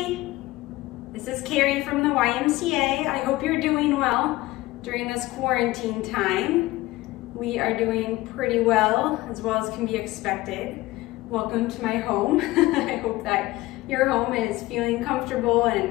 this is Carrie from the YMCA. I hope you're doing well during this quarantine time. We are doing pretty well as can be expected. Welcome to my home. I hope that your home is feeling comfortable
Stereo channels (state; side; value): quieter; right; 18.6 dB